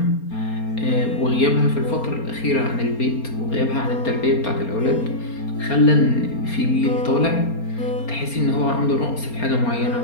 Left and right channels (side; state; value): right; late; 4.3 ms